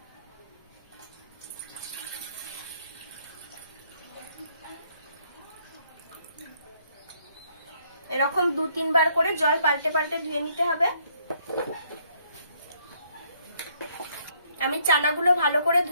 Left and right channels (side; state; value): both; inverted; correlation -0.68